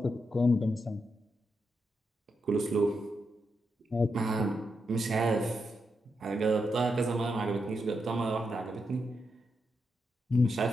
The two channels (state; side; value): normal; both; correlation 0.84